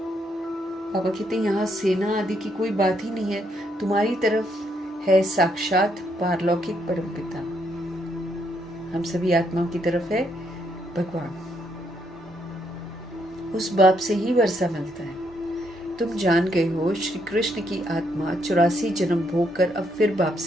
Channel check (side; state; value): both; normal; correlation 0.74